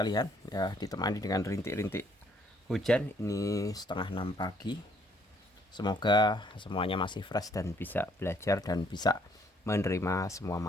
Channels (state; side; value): normal; both; correlation 0.66